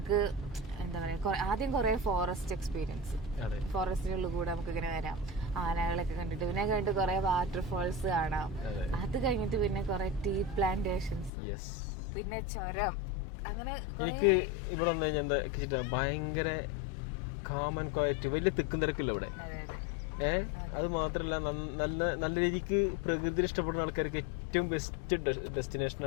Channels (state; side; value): drops out; right; at 11.3 s